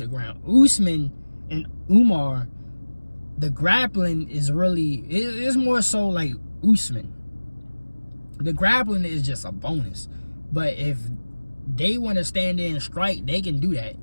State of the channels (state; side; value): inverted; both; correlation -1.00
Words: the ground. Usman and Umar, the grappling is really, it's more so like Usman. The grappling is just a bonus. But if they want to stand there and strike, they can do that.